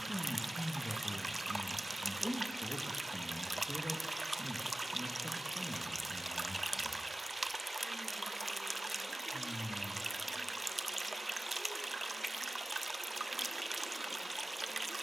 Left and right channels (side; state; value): both; normal; correlation 0.96